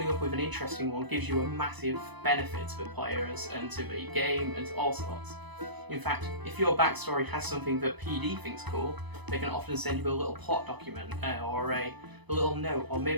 up with an interesting one gives you a massive benefit to the players and to the game and to all sorts. In fact, if your backstory has something that PD thinks cool, they can often send you a little plot document or a little note, or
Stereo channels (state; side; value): late; left; 1.0 ms